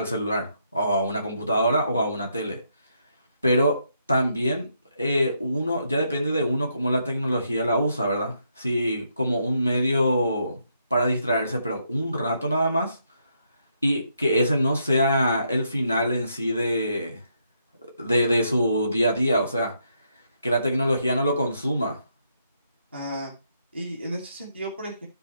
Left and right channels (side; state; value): both; inverted; correlation -0.77